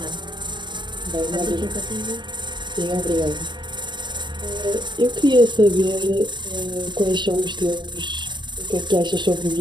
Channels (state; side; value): late; left; 0.22 ms